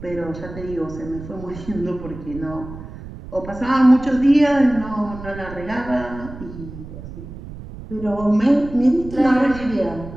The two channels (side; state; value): right; noise; rumble, 13 dB below the sound